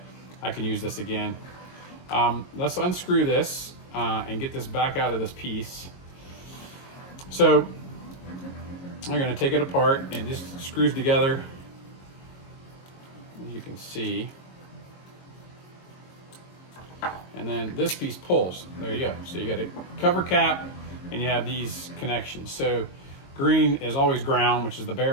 I can use this again. Let's unscrew this and get this back out of this piece. So I'm going to take it apart, and just screws together. You can see. And then this piece pulls. There you go. So you got a cover cap, and you have these connections. So green is always ground, which is the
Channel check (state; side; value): late; right; 22 ms